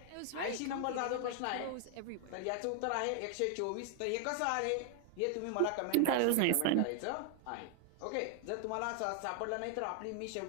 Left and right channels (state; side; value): different; both; correlation 0.00